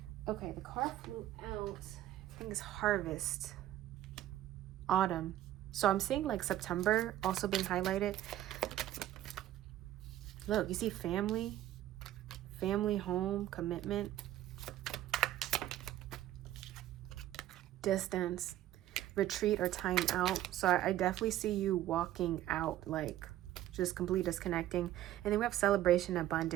Okay, the card flew out. I think it's Harvest. Autumn. So I'm seeing like September also being highlighted. Look, you see family, home, commitment, distance, retreat, or time out. So I definitely see you walking out, like just completely disconnecting. And then we have celebration,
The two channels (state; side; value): quieter; left; 13.4 dB